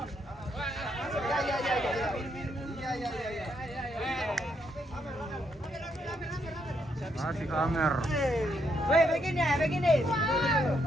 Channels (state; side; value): normal; both; correlation 0.76